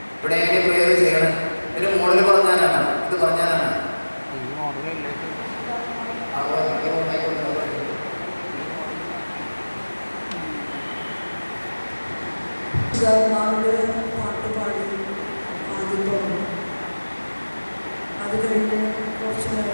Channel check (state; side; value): inverted; both; correlation -1.00